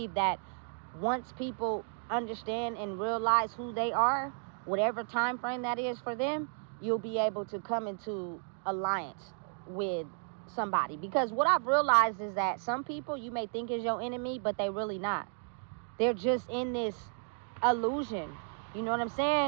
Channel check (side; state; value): left; silent; 56 dB below the other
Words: that once people understand and realize who they are, whatever time frame that is for them, you'll be able to come into alliance with somebody. Because what I've realized is that some people you may think is your enemy, but they really not. They're just in this illusion. You know what I'm